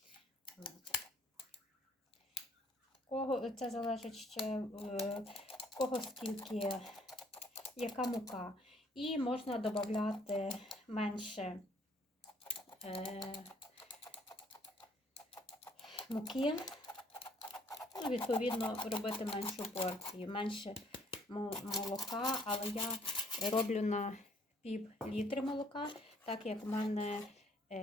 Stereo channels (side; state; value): both; normal; correlation 0.63